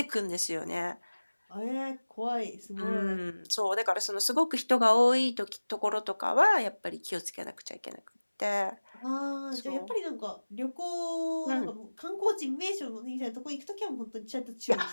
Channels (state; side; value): inverted; both; correlation -1.00